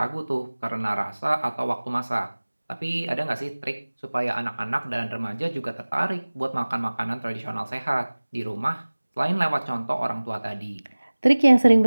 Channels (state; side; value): inverted; both; correlation -1.00